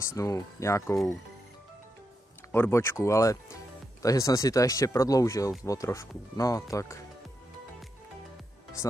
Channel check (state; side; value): normal; both; correlation 0.85